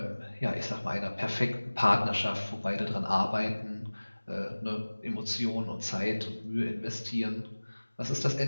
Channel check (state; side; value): inverted; both; correlation -1.00